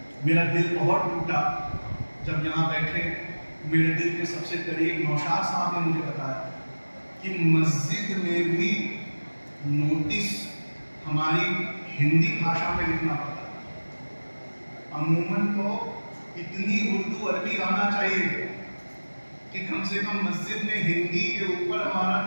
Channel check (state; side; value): inverted; both; correlation -1.00